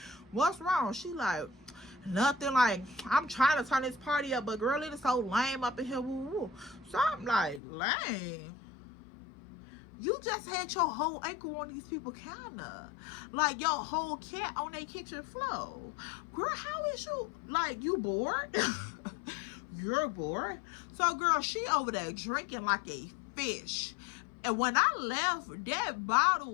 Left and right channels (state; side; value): drops out; right; at 7.6 s